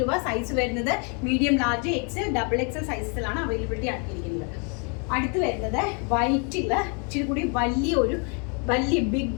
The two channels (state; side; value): quieter; right; 36.7 dB